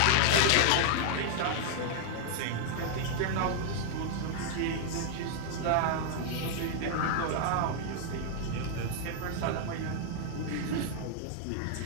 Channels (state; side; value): different; both; correlation 0.00